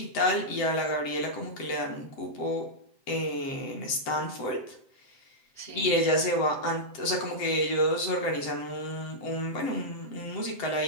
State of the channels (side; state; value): right; late; 7.7 ms